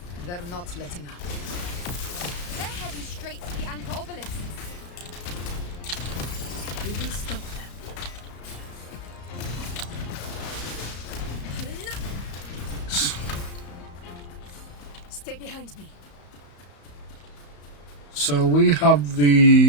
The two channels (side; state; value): right; late; 34 ms